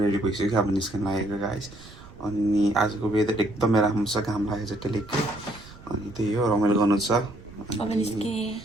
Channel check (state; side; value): noise; right; rumble, 20 dB below the sound